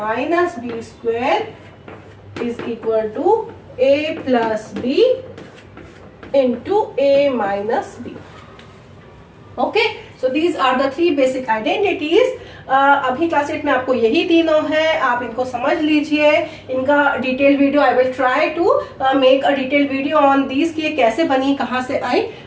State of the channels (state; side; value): identical; both; correlation 1.00